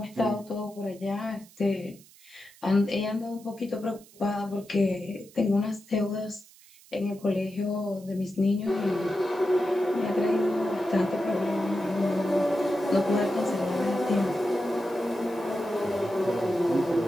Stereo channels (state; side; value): noise; right; hiss, 24 dB below the sound